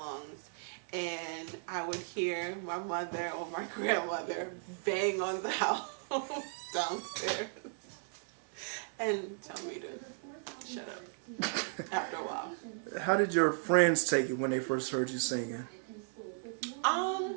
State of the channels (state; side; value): silent; left; digital silence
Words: And I would hear my mother or my grandmother bang on the house downstairs and tell me to shut up after a while. How did your friends take it when they first heard you singing?